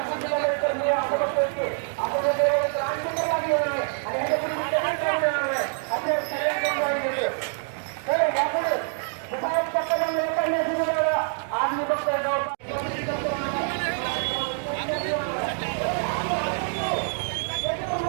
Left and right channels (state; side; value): silent; left; 61 dB below the other